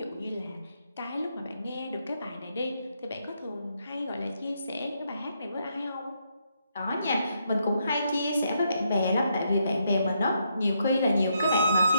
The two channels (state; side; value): inverted; both; correlation -0.77